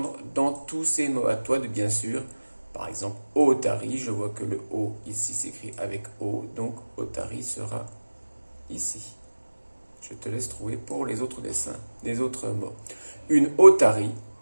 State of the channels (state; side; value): inverted; both; correlation -1.00